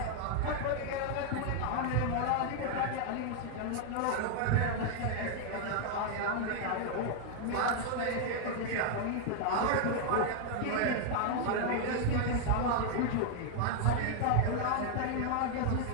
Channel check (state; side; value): different; both; correlation 0.00